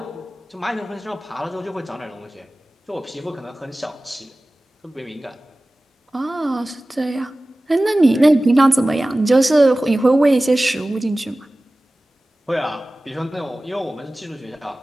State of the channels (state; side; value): normal; both; correlation 0.97